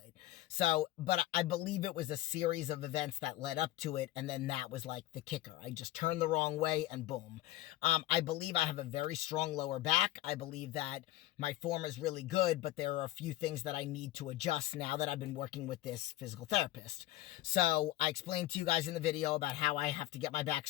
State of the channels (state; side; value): quieter; right; 16.0 dB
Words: So, but I believe it was a series of events that led up to it, and then that was like the kicker. I just turned the wrong way and boom. I believe I have a very strong lower back. I believe that my form is really good, but there are a few things that I need to adjust now that I've been working with this physical therapist. So I explained to you guys in the video about how I have to get my back